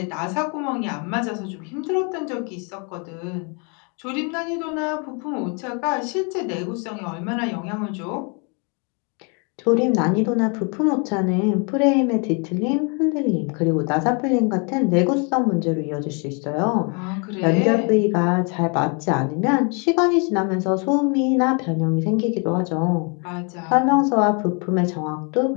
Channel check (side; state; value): right; quieter; 34.9 dB